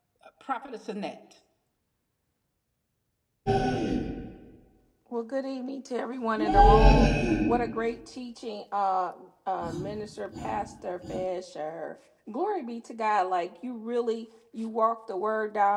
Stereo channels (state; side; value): identical; both; correlation 1.00